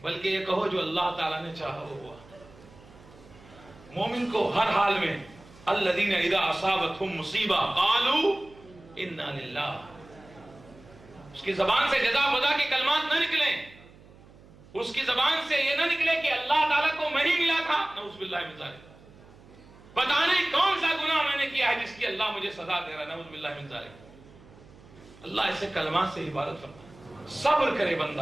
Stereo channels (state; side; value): noise; right; hum, 23 dB below the sound